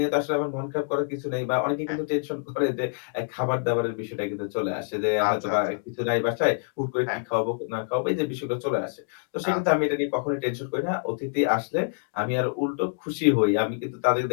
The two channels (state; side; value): silent; right; digital silence